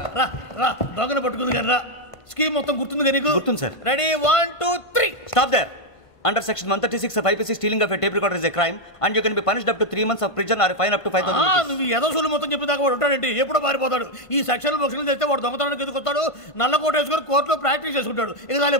రా దొంగను పట్టుకుంది కానీ రా. స్కీమ్ మొత్తం గుర్తుంది కానీ గుర్తుంది sir. Ready 1 2 3. Stop there. Under section 136 of IPC, stealing of a tape recorder is a crime and you can be punished up to 3 months of prison or a fine up to 5,000 rupees. నువ్వు ఏదో సొల్లు మొత్తం చెప్పేదాకా వాడు ఉంటాడండి, ఎప్పుడో పారిపోతాడు. ఈ సెక్షన్ బొక్షన్లు చేస్తే వాడు దొంగతనానికి ఎందుకు వస్తాడు? నల్ల కోట వేసుకొని కోర్టులో ప్రాక్టీస్ చేసుకుంటాడు. ఇక చాలే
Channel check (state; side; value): late; right; 1.5 ms